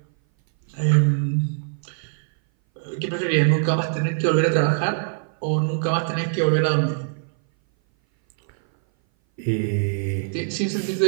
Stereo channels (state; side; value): silent; left; 59 dB below the other